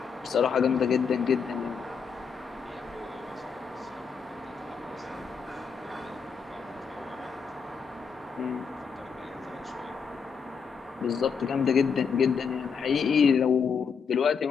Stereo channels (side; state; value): right; quieter; 6.1 dB